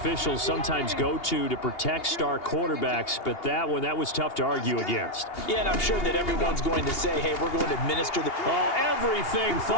sometimes go to protect star quarterbacks, but that one, that was tough to argue against. Yeah, and I'm sure that everyone's going to say, hey, we're going to administer the... Oh, everything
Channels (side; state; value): right; late; 2.8 ms